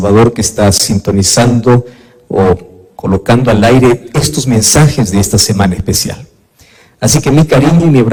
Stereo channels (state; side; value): identical; both; correlation 1.00